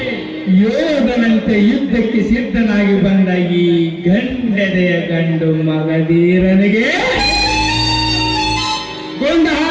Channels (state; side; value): identical; both; correlation 1.00